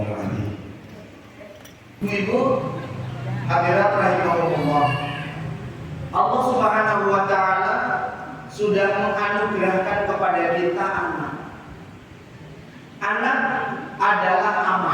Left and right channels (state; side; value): identical; both; correlation 1.00